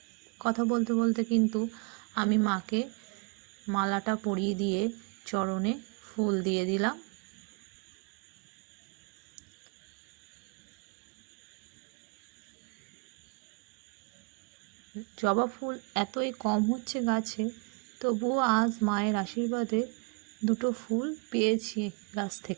কথা বলতে বলতে কিন্তু আমি মাকে মালাটা পরিয়ে দিয়ে চরণে ফুল দিয়ে দিলাম। জবা ফুল এতই কম হচ্ছে গাছে, তবুও আজ মায়ের আশীর্বাদে দুটো ফুল পেয়েছি গাছ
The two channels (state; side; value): quieter; left; 31.1 dB